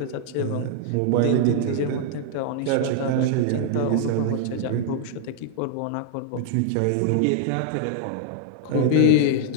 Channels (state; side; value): different; both; correlation 0.00